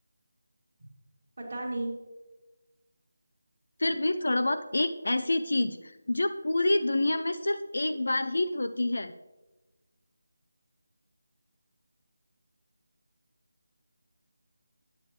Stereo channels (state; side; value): inverted; both; correlation -0.98